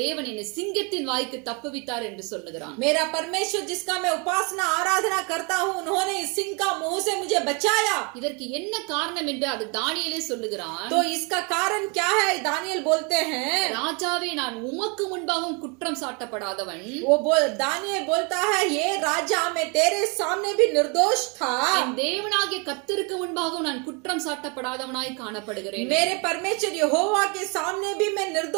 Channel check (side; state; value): left; quieter; 32.6 dB